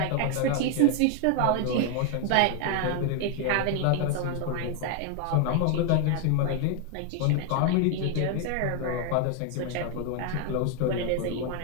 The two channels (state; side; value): different; both; correlation 0.01